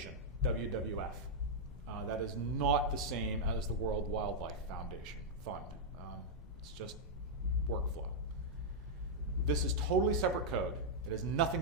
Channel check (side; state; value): both; normal; correlation -0.05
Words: WWF. That is not the same as the World Wildlife Foundation Fund. It's just workflow. This is totally separate code. It has nothing